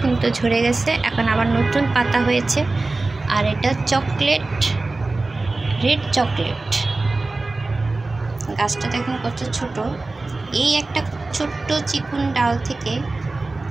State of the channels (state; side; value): quieter; left; 3.3 dB